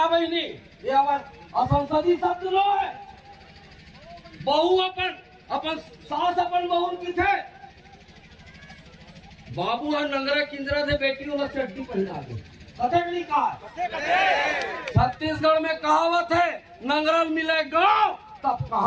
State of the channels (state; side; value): identical; both; correlation 1.00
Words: बहनी, ये हमार असंसदीय शब्द लो है। बहू अपन सास अपन बहू की थे, बाबू है नंगरा किंजरा से बेटी वाला चड्डी पहना दे, कथकली कहा। छत्तीसगढ़ में कहावत है नंगरल मिले गाँव तब